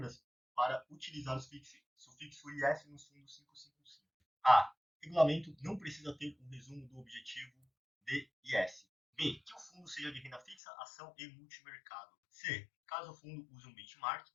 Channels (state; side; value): drops out; right; at 10.6 s